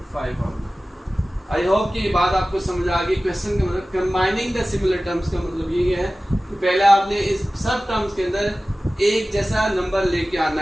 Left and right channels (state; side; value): normal; both; correlation 0.96